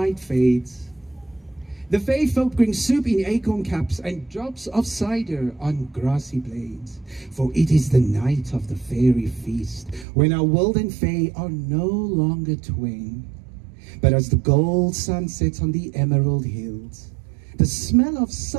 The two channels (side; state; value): left; drops out; at 10.1 s